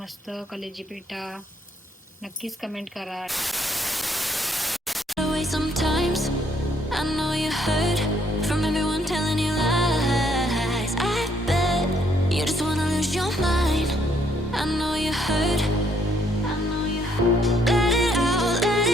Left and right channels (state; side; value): normal; both; correlation 0.69